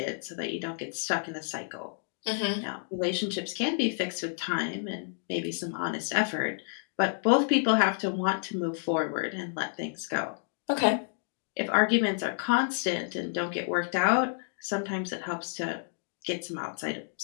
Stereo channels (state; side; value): silent; right; digital silence